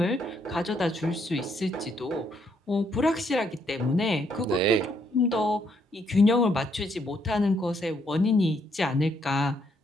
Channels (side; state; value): both; normal; correlation 0.72